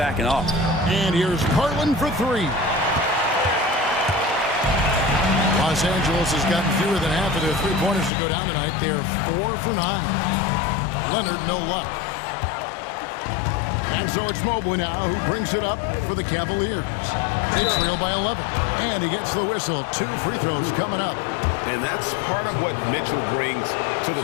off. And here's Garland for three. Los Angeles has gotten fewer than half of their three-pointers to go down tonight. They're 4 for 9. Leonard, no luck. And so it's Mobley now who brings it up for the Cavaliers. They trail by 11. And he gets the whistle. 2 free throws coming up. And that's part of what Mitchell brings to the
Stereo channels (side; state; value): right; drops out; at 8.1 s